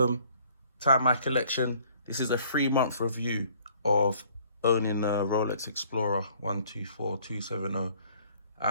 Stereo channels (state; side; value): inverted; both; correlation -0.59